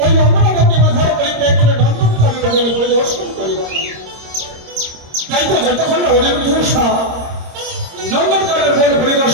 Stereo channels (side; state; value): left; late; 26 ms